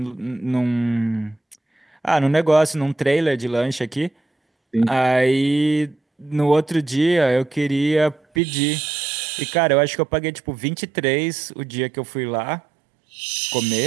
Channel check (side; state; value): left; drops out; at 8.4 s